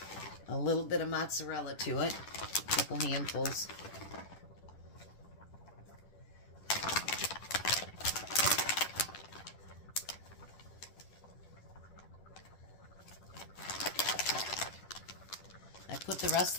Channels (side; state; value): right; late; 10 ms